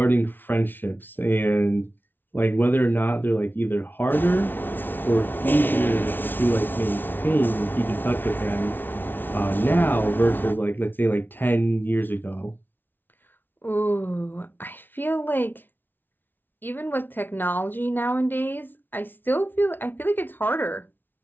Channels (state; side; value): late; right; 0.094 ms